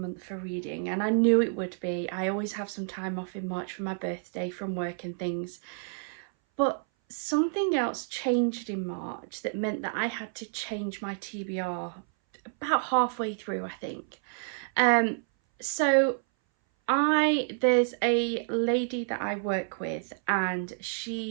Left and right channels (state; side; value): silent; left; 58 dB below the other